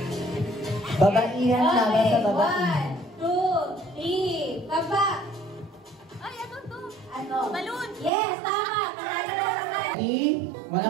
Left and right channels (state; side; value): drops out; left; at 8.1 s